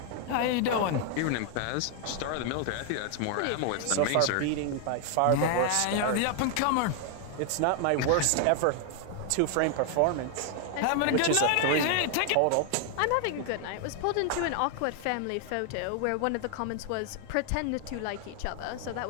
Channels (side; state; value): both; different; correlation 0.00